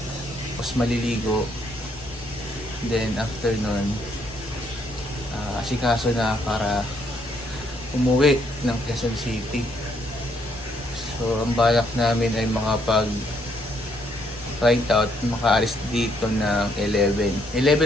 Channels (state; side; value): normal; both; correlation 0.71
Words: Tapos maliligo. Then after nun, asikaso na para umuwi ng Quezon City. So ang balak namin ay ride out, makaalis dito ng 11.